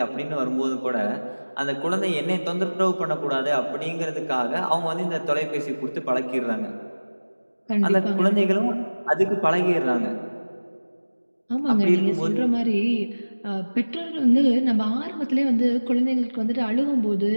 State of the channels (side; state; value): both; inverted; correlation -1.00